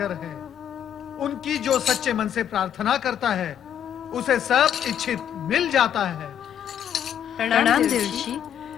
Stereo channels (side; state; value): right; quieter; 9.6 dB